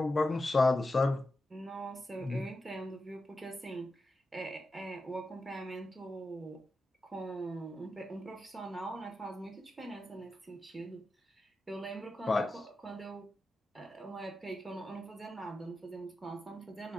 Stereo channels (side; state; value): both; normal; correlation 0.91